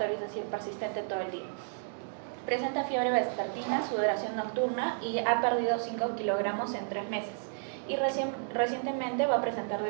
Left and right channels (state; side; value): silent; left; digital silence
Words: es decir, persistente todo el día. Presenta fiebre vespertina, sudoración nocturna y ha perdido 5 kilogramos en 3 meses. Y recientemente va a presentar